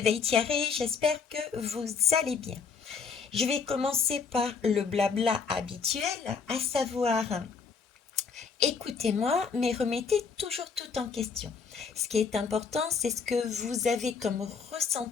Thierry, j'espère que vous allez bien. Je vais commencer par le blabla habituel, à savoir écoutez-moi, mais remettez toujours tout en question. Ce qui est important, c'est ce que vous avez comme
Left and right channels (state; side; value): quieter; right; 5.6 dB